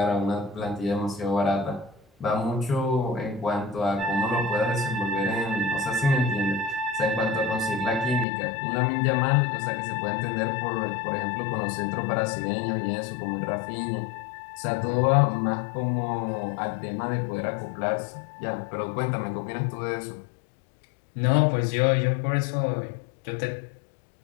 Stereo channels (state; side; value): drops out; right; at 8.2 s